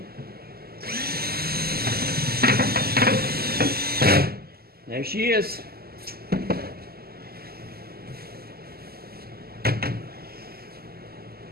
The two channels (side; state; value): left; late; 0.45 ms